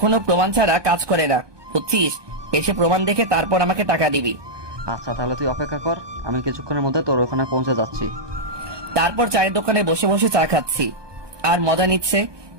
প্রমাণ ছাড়া কাজ করে না, বুঝছিস? এসে প্রমাণ দেখে তারপর আমাকে টাকা দিবি। আচ্ছা তাহলে তুই অপেক্ষা কর, আমি কিছুক্ষণের মধ্যে তোর ওখানে পৌঁছে যাচ্ছি। তারপর চায়ের দোকানে বসে বসে চা খাচ্ছি আর মজা নিচ্ছে।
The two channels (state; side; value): late; left; 1.2 ms